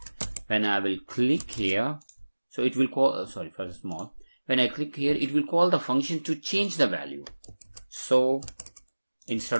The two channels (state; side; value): inverted; both; correlation -1.00